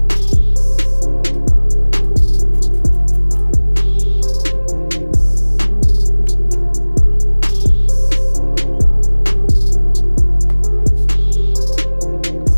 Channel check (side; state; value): both; inverted; correlation -1.00